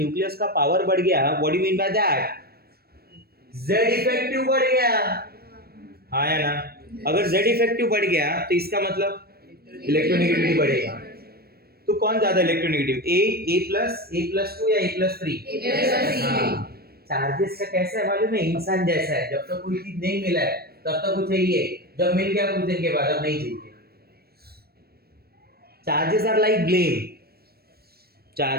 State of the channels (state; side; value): late; left; 0.45 ms